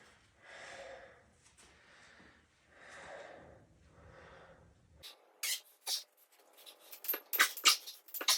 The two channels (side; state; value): both; identical; correlation 1.00